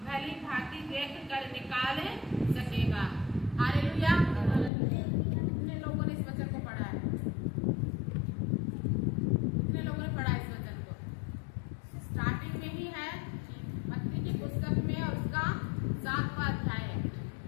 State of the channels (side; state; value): right; drops out; at 4.7 s